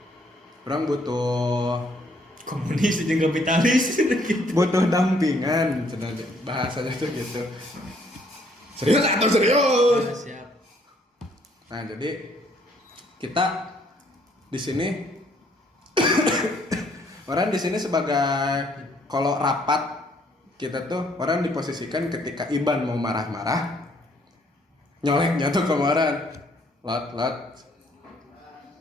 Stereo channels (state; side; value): normal; both; correlation 0.66